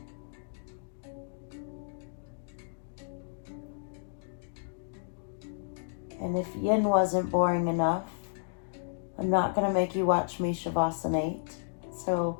And if yin wasn't boring enough, I'm not going to make you watch me Shavasana. So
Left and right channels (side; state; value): right; silent; digital silence